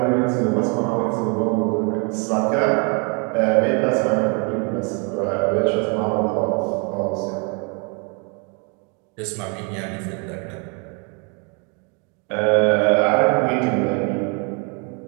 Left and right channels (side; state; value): left; quieter; 35.1 dB